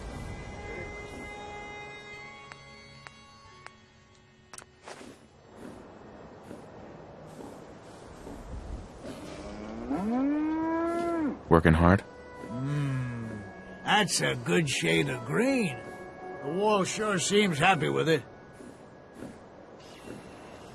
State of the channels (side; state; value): both; identical; correlation 1.00